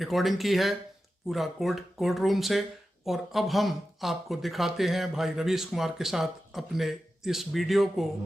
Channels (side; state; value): both; normal; correlation 0.92